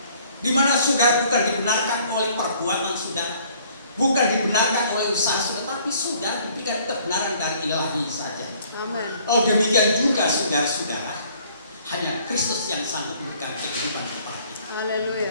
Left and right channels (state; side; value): inverted; both; correlation -0.58